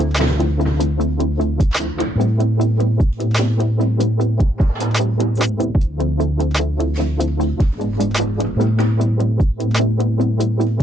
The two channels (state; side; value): normal; both; correlation 0.77